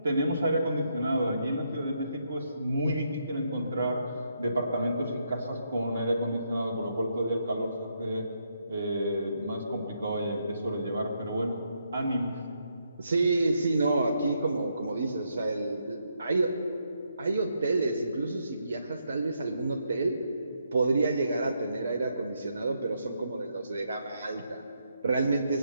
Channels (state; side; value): inverted; both; correlation -0.78